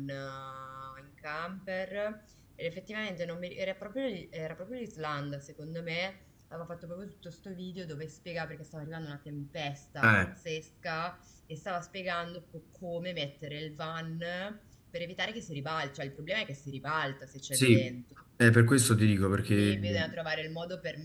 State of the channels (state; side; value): identical; both; correlation 1.00